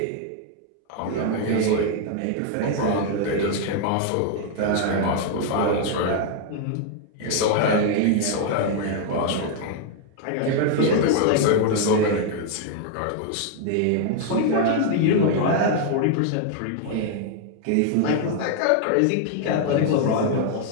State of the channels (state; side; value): different; both; correlation 0.00